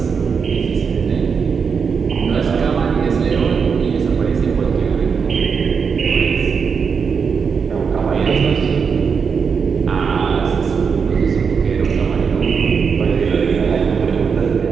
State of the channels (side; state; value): left; quieter; 6.0 dB